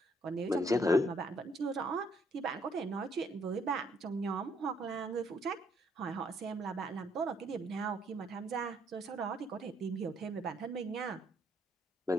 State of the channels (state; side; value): normal; both; correlation 0.69